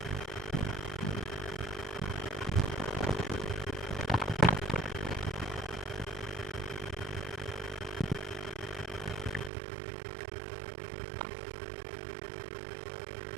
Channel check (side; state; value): left; drops out; at 9.5 s